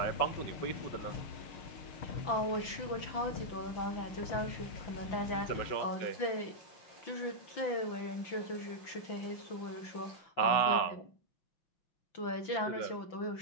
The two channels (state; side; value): late; right; 5.9 ms